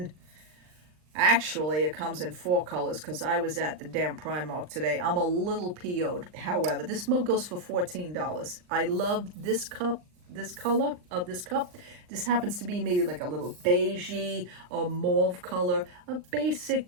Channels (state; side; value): late; left; 39 ms